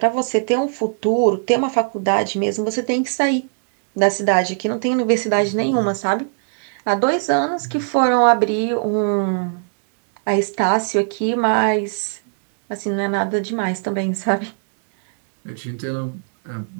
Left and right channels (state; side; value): silent; left; 65 dB below the other